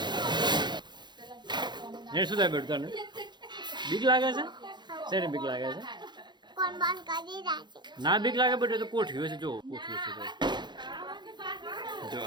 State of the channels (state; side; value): late; left; 0.21 ms